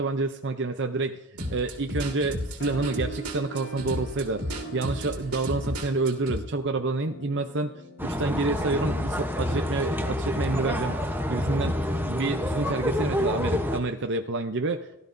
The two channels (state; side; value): normal; both; correlation 0.45